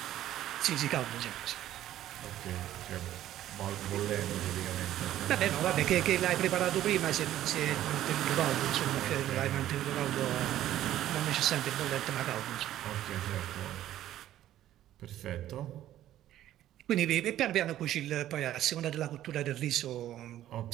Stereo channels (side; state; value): left; quieter; 12.9 dB